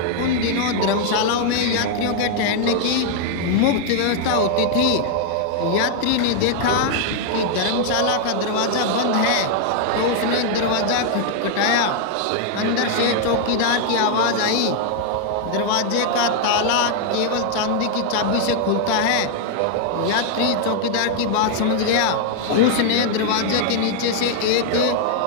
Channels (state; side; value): different; both; correlation -0.01